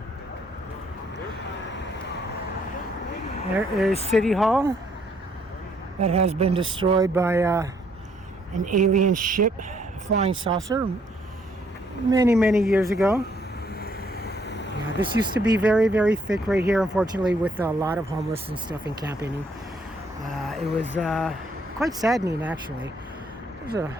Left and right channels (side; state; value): both; normal; correlation 0.68